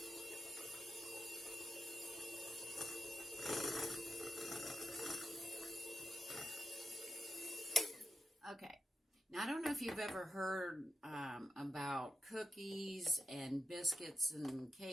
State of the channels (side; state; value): both; normal; correlation 0.88